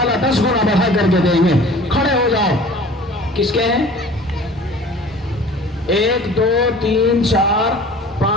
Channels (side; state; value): both; normal; correlation 0.45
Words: 10 गुना बढ़ा करके देंगे। खड़े हो जाओ। किसके हैं? 1 2 3 4